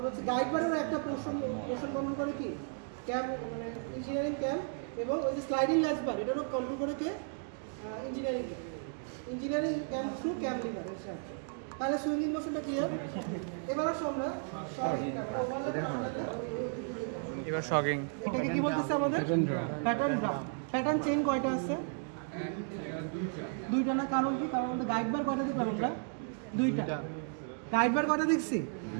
হচ্ছে গাইড বারের একটা মোশন কন্ট্রোল করে কি ক্যাম, মানে ইঞ্জিনিয়ারিং ক্যাম। এবং ওই যে স্লাইডিং ল্যাচ বার এটারও কন্ট্রোল করে কে? ইঞ্জিনিয়ারিং ক্যাম থ্রু ক্যাম লিভার। তাহলে সুইঙ্গিং মোশনটা ক্লিয়ার। এবার আসো আমরা এবার শকিং। এটাকে কি বলতেছে আমাদের? Pattern drum. প্যাটার্ন চেইন কয়টা আছে? দুইটা না? কারণ কি? কারণ আমাদের গাইড বার কয়টা দেখলাম আমরা? দুইটা। গাইড বার কয়টা দেখছি?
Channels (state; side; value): silent; left; 55 dB below the other